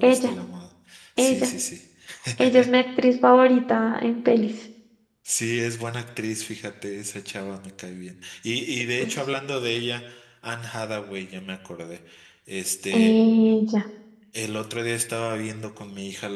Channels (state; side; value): identical; both; correlation 1.00